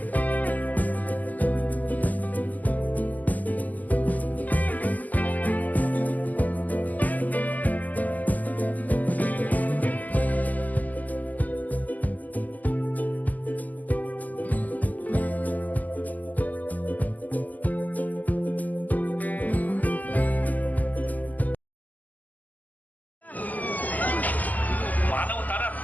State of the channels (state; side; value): late; right; 0.081 ms